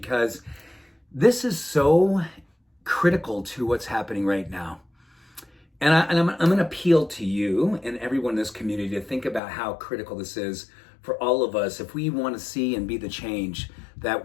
this is so critical to what's happening right now. And I'm going to appeal to you and everyone in this community to think about how critical this is for all of us if we want to see and be the change that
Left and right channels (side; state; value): right; drops out; at 9.4 s